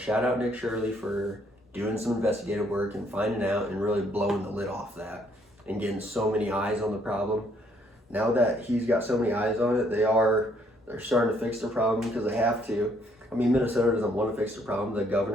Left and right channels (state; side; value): normal; both; correlation 0.67